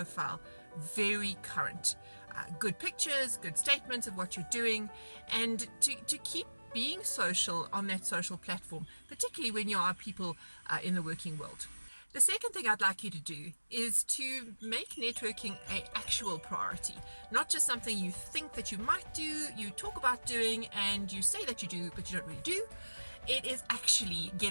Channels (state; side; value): inverted; both; correlation -1.00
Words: very current. Good pictures, good statements of what you're doing, and to keep being social on that social platform, particularly when you are people in the working world. The second thing I'd like you to do is to make networking an actual priority, not just something you think that you might do, you talk about doing, and you say that you do, but you don't really do. It is actually